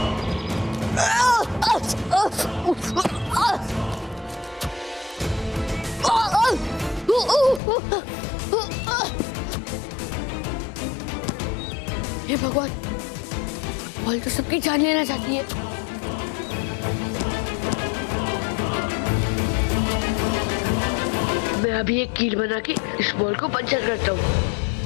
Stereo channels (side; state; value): right; drops out; at 7.6 s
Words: हे भगवान, बॉल तो सबकी जान लेना चाहती है। मैं अभी एक कील बना के इस बॉल को पंचर करता हूँ।